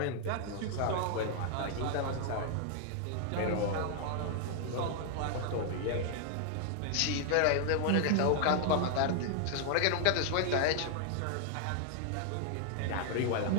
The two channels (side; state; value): both; different; correlation 0.00